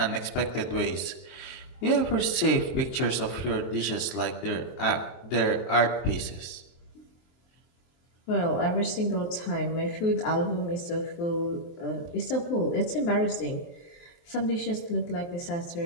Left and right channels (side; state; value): right; late; 23 ms